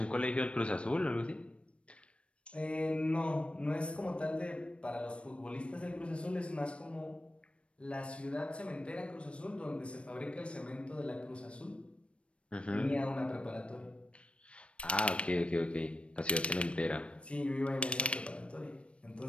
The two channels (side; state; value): right; late; 0.060 ms